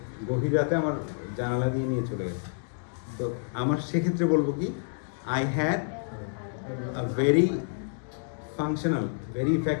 গভীর রাতে আমার জানালা দিয়ে নিয়ে চলে গেছে। তো আমার সেক্ষেত্রে বলবো কি, I had a very functional, very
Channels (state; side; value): silent; right; digital silence